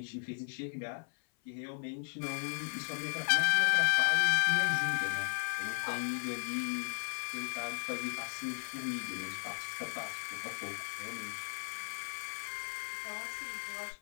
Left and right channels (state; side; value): silent; right; 54 dB below the other